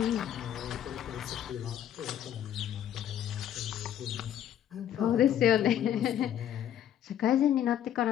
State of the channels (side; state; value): right; quieter; 10.5 dB